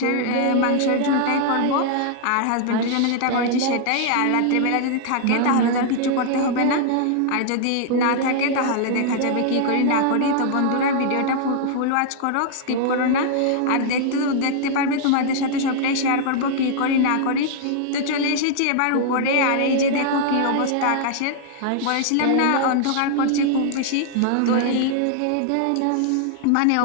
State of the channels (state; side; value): different; both; correlation -0.01